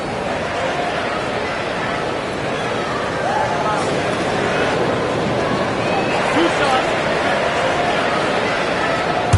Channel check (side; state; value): both; identical; correlation 1.00